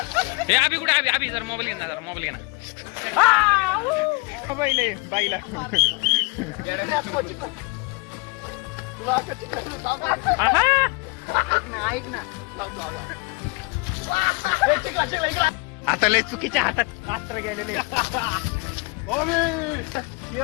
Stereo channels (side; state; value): right; quieter; 28.9 dB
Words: हे अभि कुठे? अभि जरा मोबाईल घे ना, जरा मोबाईल घे ना. बाईला ऐक ना. आता लय चुकीच्या हातात अस्त्र गेलेले.